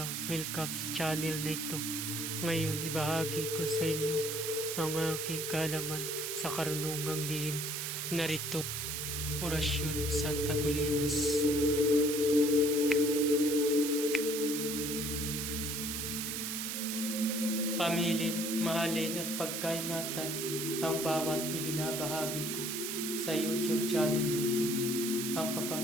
welcome sa channel na ito. Ngayon, ibahagi ko sa inyo ang aking kaalaman sa karunungang lihim. Narito, orasyon sa Taguliwas. Pamilin, mahalin at pagkaingatan ang bawat ibinabahagi ko sa YouTube channel na ito. Ang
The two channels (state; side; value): noise; right; hiss, 3 dB below the sound